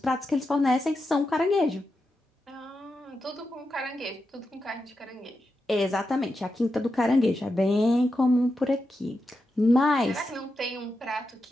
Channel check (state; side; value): normal; both; correlation 0.88